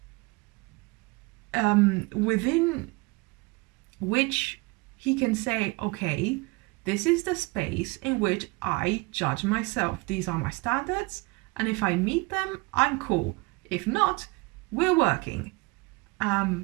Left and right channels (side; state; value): left; quieter; 25.8 dB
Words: within which he can say, okay, this is the space in which I judge myself. These are my standards, and if I meet them, I'm cool. If not, we're working.